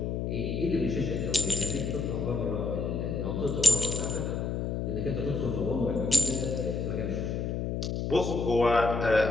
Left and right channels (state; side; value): noise; left; hum, 2 dB below the sound